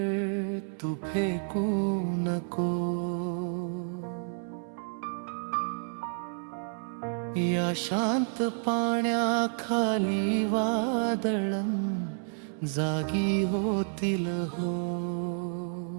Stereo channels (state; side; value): silent; left; 58 dB below the other